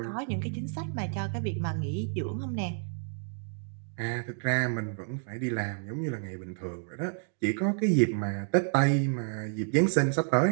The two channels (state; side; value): silent; left; 58 dB below the other